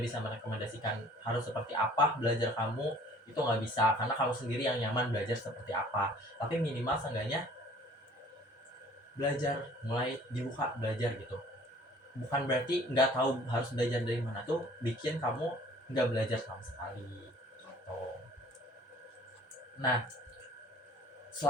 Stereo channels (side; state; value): both; normal; correlation 0.52